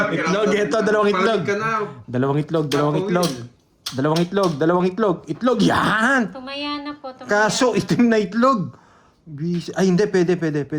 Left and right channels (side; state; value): both; identical; correlation 1.00